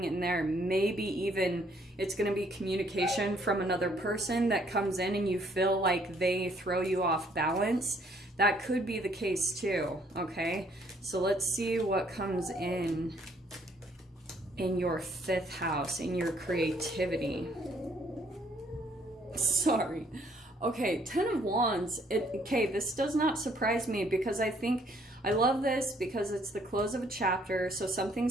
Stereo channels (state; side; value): normal; both; correlation 0.65